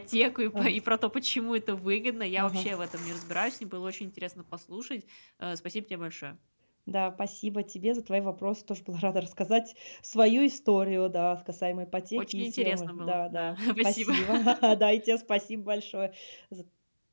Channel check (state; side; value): inverted; both; correlation -1.00